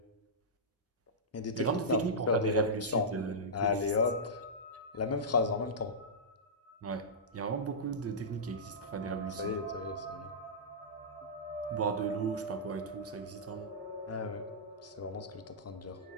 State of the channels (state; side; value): normal; both; correlation -0.14